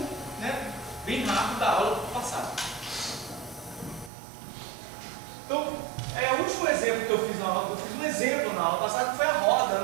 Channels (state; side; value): drops out; left; at 4.1 s